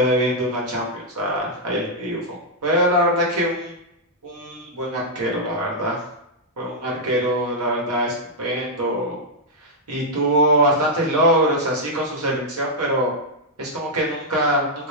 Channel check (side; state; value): both; normal; correlation -0.05